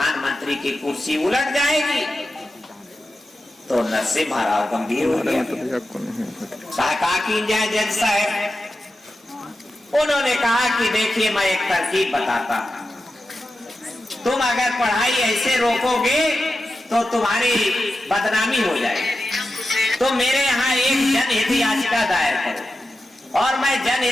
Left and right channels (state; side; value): normal; both; correlation 0.91